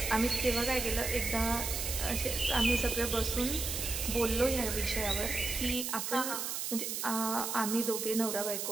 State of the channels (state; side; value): noise; right; hiss, 3 dB below the sound